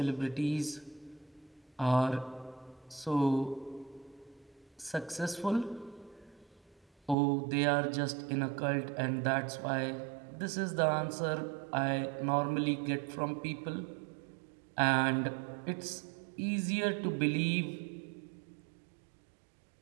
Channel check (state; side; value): drops out; left; at 7.2 s